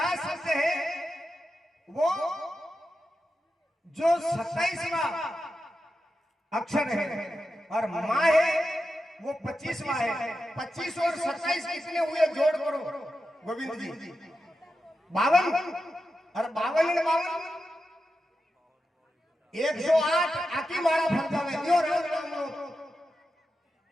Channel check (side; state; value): both; normal; correlation 0.90